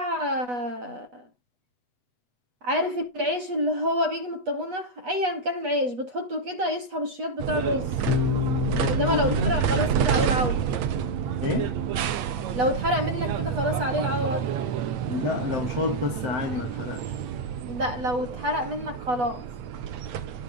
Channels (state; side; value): late; left; 8.1 ms